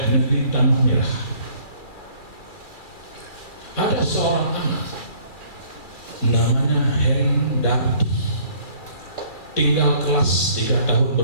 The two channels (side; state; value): right; late; 2.3 ms